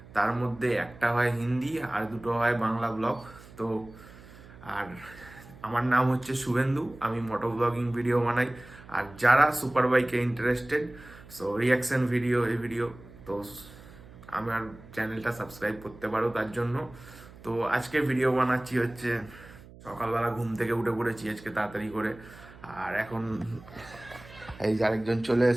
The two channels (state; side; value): noise; right; hum, 20 dB below the sound